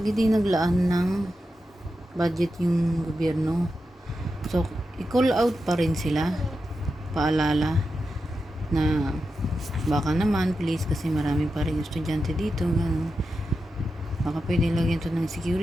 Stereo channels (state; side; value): normal; both; correlation 0.89